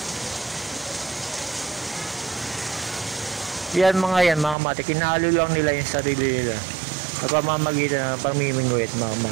Yan mga kamatik, kinahalo lang nila yung sarili nila sa pamamagitan ng pamimingwit mga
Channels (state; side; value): drops out; left; at 4.5 s